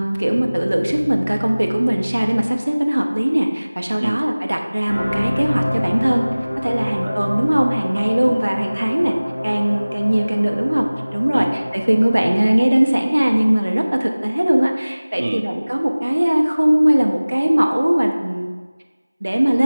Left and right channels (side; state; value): both; inverted; correlation -0.99